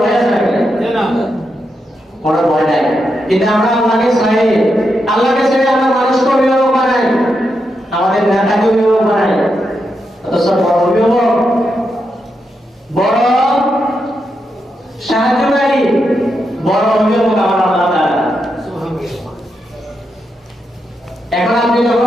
ভয় আছে নাকি? কোনো ভয় নাই। কিন্তু আমরা আল্লাহকে ছেড়ে আমরা মানুষকে অভিভাবক বানাই, আমাদের নেতাকে অভিভাবক বানাই। অথচ বড় অভিভাবক, বড় সাহায্যকারী, বড় অভিভাবক আমার আল্লাহ তাআলা। এখন আমি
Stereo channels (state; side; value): normal; both; correlation 0.84